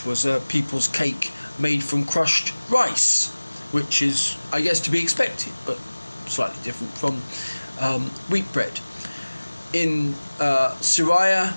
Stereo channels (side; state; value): both; inverted; correlation -1.00